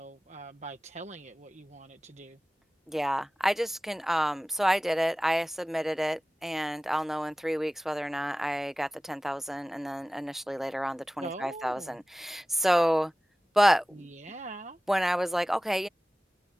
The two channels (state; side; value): normal; both; correlation 0.97